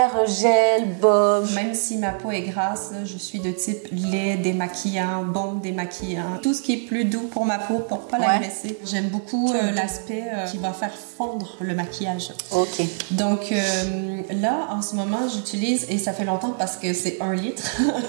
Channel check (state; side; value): silent; left; digital silence